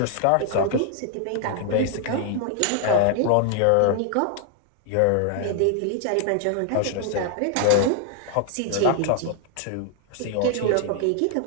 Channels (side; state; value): both; different; correlation 0.00